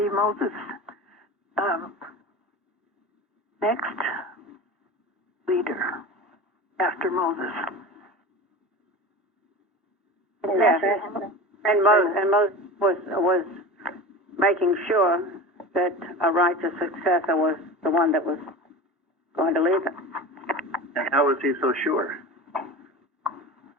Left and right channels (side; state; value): both; normal; correlation 0.32